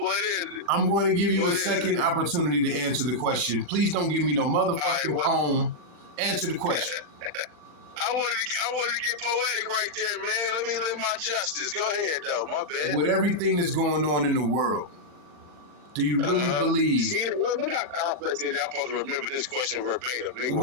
is it? I'm going to give you a second opportunity to answer the question. Please don't give me no motherfucking poem. Answer the question. I wanted to get poetic right there, man. Let me live my justice. Go ahead, though. My bad. With everything that's going on in the world, do you really believe? See, look how complex it is. I'm supposed to remember this question verbatim,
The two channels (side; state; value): left; late; 39 ms